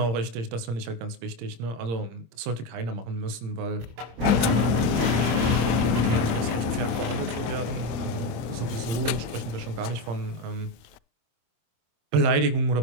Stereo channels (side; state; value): left; late; 25 ms